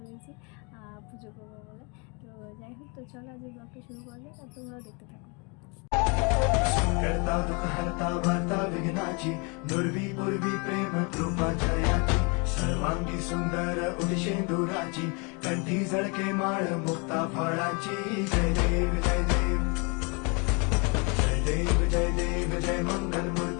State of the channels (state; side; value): quieter; right; 31.9 dB